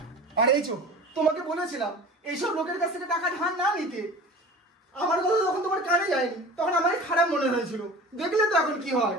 আর এই চো, তোমাকে বলেছিলাম এইসব লোকের কাছ থেকে টাকা ধার না নিতে। আমার কথা যখন তোমার কানে যায়নি, তখন আমারই খারাপ মনে হয়েছিল। দেখলে তো এখন কি হয়।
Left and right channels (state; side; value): normal; both; correlation 0.39